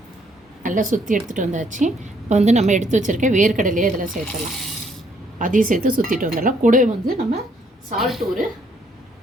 நல்லா சுற்றி எடுத்துகிட்டு வந்தாச்சு. இப்போ வந்து நம்ம எடுத்து வச்சுருக்க வேர்க்கடலையே இதில் சேர்த்துடலாம். அதையும் சேர்த்து சுற்றிட்டு வந்துடலாம். கூடவே வந்து நம்ம சால்ட்டு ஒரு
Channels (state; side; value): normal; both; correlation 0.68